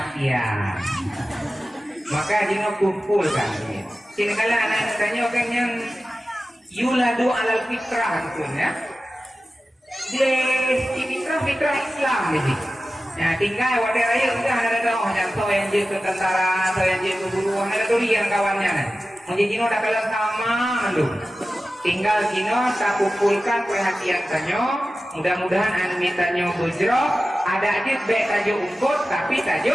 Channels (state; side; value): normal; both; correlation 0.94